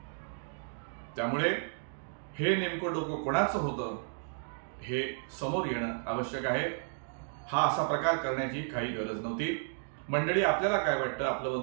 त्यामुळे हे नेमकं डोकं कोणाचं होतं हे समोर येणं आवश्यक आहे। हा असा प्रकार करण्याची काही गरज नव्हती। मंडळी, आपल्याला काय वाटतं आपलं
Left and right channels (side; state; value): left; silent; digital silence